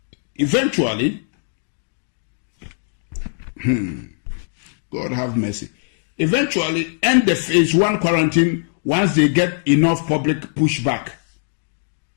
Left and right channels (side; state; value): right; silent; digital silence